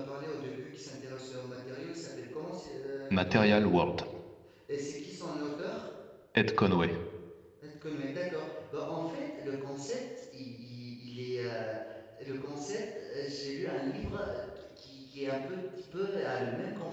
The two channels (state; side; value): identical; both; correlation 1.00